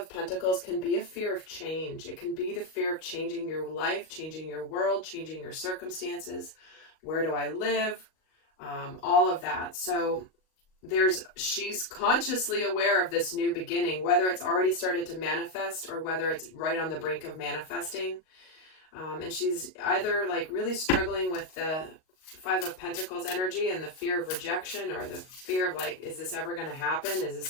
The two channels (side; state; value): right; late; 38 ms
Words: Pentacles can be a fear of change. It can be the fear of changing your life, changing your world, changing your circumstances. Where do I live? All of that. So she's consciously aware of this new beginning, whether it's already started to manifest or whether it's right on the brink of manifesting. And she's either like really struggling with the Five of Pentacles energy and the fear of rejection, or the fear of like, is this ever going to happen? Is this